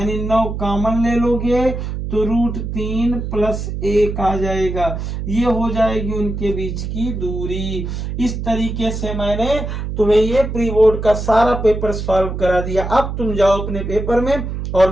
9 कॉमन ले लोगे तो √3 + 1 आ जाएगा। ये हो जाएगी उनके बीच की दूरी। इस तरीके से मैंने तुम्हें ये प्री बोर्ड का सारा पेपर सॉल्व करा दिया। अब तुम जाओ अपने पेपर में और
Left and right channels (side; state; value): right; noise; hum, 5 dB below the sound